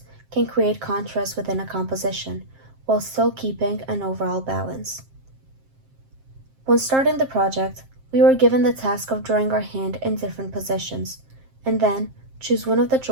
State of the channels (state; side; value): late; left; 7.5 ms